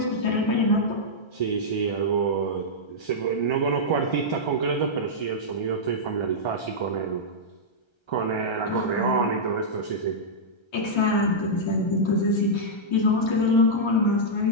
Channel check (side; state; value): right; late; 1.3 ms